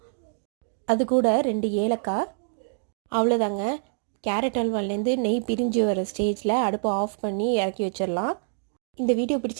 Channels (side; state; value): left; silent; digital silence